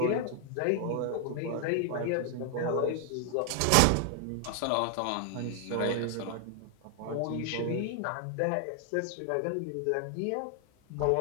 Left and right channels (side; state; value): both; different; correlation 0.00